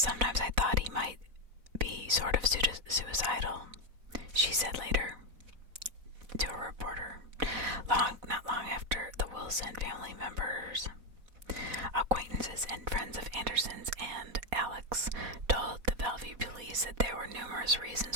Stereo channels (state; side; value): late; left; 4.0 ms